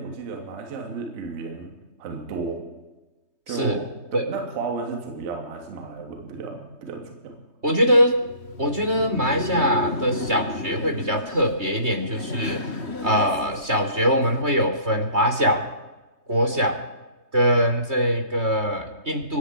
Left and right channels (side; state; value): left; late; 3.2 ms